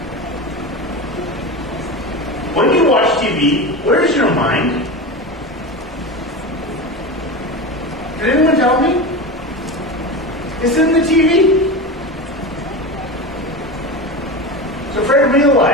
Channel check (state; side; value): normal; both; correlation 0.24